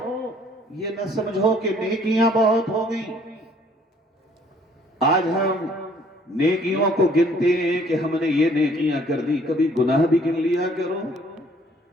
یہ نہ سمجھو کہ نیکیاں بہت ہو گئی۔ آج ہم نیکیوں کو گنتے ہیں کہ ہم نے یہ نیکیاں کر دی، کبھی گناہ بھی گن لیا کرو،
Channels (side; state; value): both; normal; correlation 0.60